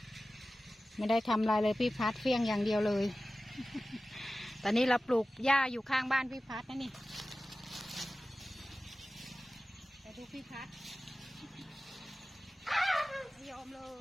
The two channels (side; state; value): both; normal; correlation 0.96